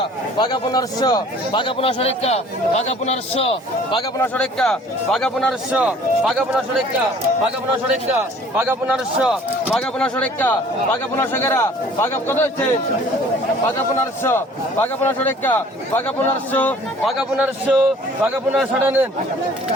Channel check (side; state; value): both; normal; correlation 0.52